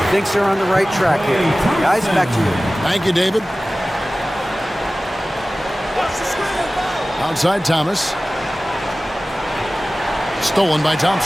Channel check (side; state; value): both; normal; correlation 0.97